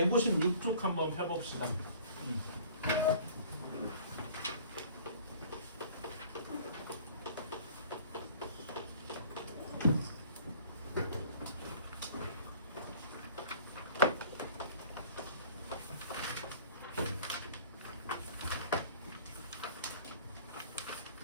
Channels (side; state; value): both; inverted; correlation -0.49